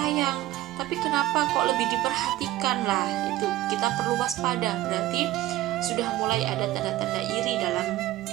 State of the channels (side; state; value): left; quieter; 15.5 dB